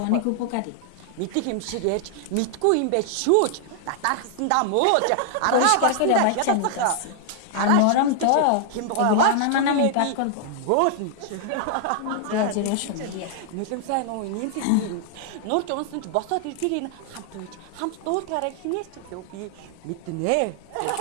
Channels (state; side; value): different; both; correlation -0.01